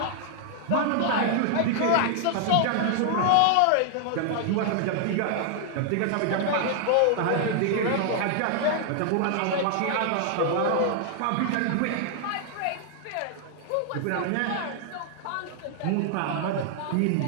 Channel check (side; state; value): both; different; correlation 0.00